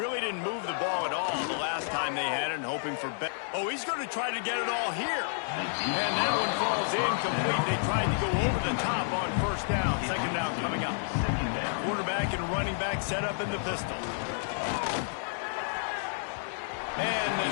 didn't move the ball at all the last time they had it, and hoping for better. Oh, he's going to try to get it all here. And that one falls incomplete. They tried to go over the top on 1st down. 2nd down coming up. Quarterback and running back set up in the pistol. And the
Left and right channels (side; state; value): right; silent; 58 dB below the other